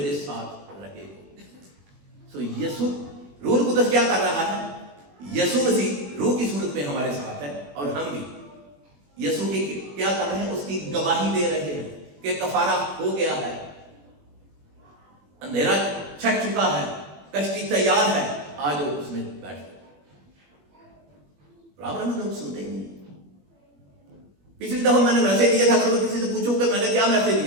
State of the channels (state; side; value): late; left; 21 ms